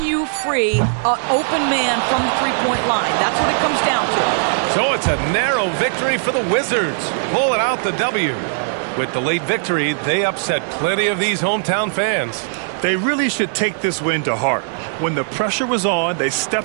you free an open man from the three-point line? That's what it comes down to. So it's a narrow victory for the Wizards, pulling out the W. With the late victory, they upset plenty of these hometown fans. They really should take this win to heart. When the pressure was on, they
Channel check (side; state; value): left; silent; digital silence